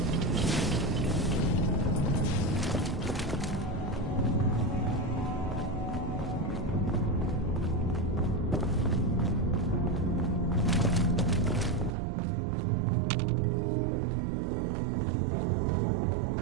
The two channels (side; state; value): left; drops out; at 11.9 s